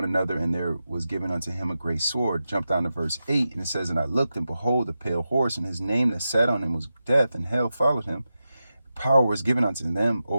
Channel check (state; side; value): inverted; both; correlation -0.91